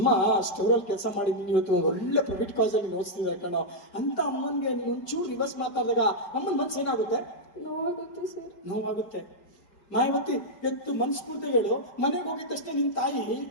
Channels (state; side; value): late; right; 5.3 ms